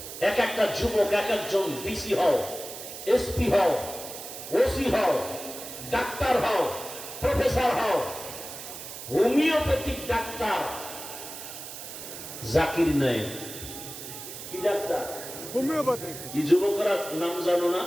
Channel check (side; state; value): right; noise; hiss, 11 dB below the sound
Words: এক একটা যুবক, এক একজন ডিসি হও, এসপি হও, ওসি হও, ডাক্তার হও, প্রফেসর হও। হোমিওপ্যাথিক ডাক্তার জাকির নায়েক, কি ডাক্তার? হোমিওপ্যাথি। কি যুবকরা নাম জানো না?